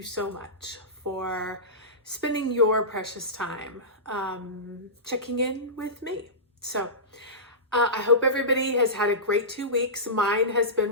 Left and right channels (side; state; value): both; normal; correlation -0.18